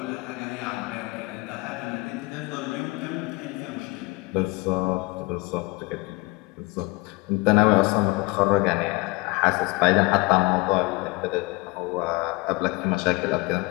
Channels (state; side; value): quieter; right; 24.0 dB